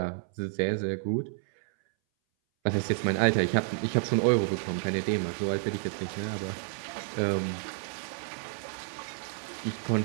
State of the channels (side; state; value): left; silent; 58 dB below the other